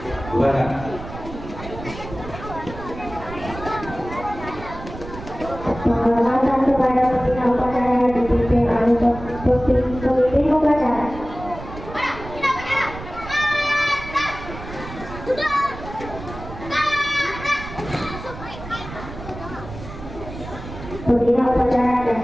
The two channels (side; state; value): right; noise; rumble, 12 dB below the sound